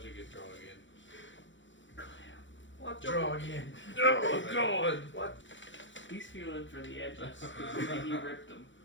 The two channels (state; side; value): late; right; 0.55 ms